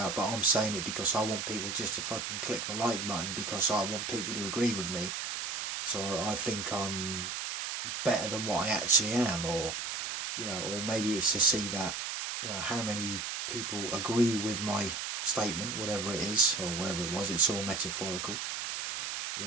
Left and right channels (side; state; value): right; noise; hiss, 3 dB below the sound